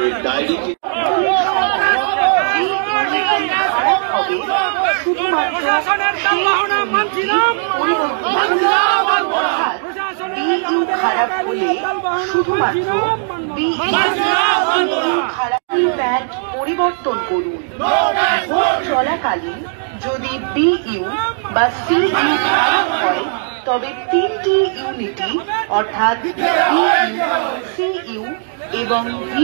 ডায়েরিতে শুধুমাত্র খারাপ হলে শুধুমাত্র প্যাড পরিবর্তন করুন। ভোট চলাকালীন যদি বিইউ বা সিইউ খারাপ হয় তবে 3টি ইউনিটই অর্থাৎ বিইউ, সিইউ এবং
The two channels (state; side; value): silent; left; digital silence